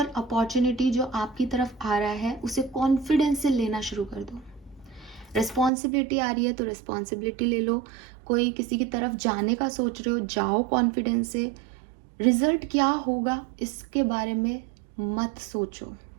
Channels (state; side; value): drops out; left; at 5.7 s